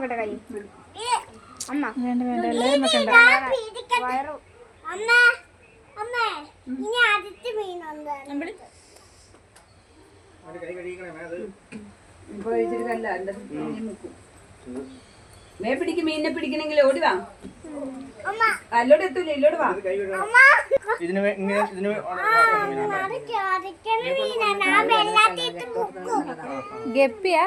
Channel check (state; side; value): identical; both; correlation 1.00